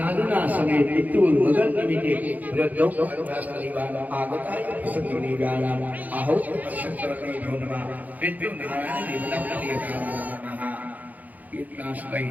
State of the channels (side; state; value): left; late; 0.080 ms